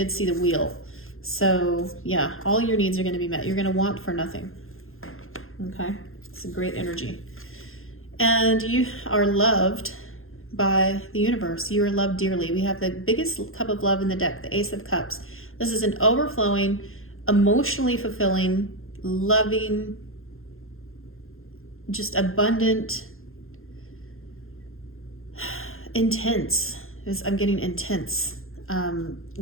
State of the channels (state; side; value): late; right; 0.61 ms